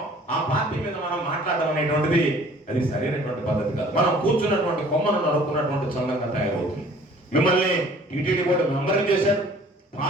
ఆ పార్టీ మీద మనం మాట్లాడడం అనేటువంటిది అది సరైనటువంటి పద్ధతి కాదు. మనం కూర్చున్నటువంటి కొమ్మను నడుపుకున్నటువంటి సంఘంగా తయారవుతుంది. మిమ్మల్ని టీటీడీ బోర్డు మెంబర్ చేశాడు,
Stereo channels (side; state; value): both; normal; correlation 0.52